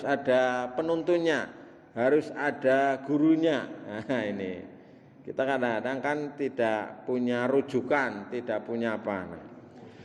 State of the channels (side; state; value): both; identical; correlation 1.00